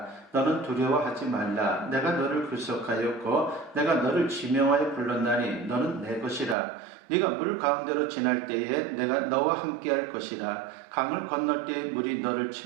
너는 두려워하지 말라. 내가 너를 구속하였고 내가 너를 지명하여 불렀나니 너는 내 것이라. 네가 물 가운데로 지날 때에 내가 너와 함께할 것이라. 강을 건널 때에 물이 너를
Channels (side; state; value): left; drops out; at 6.6 s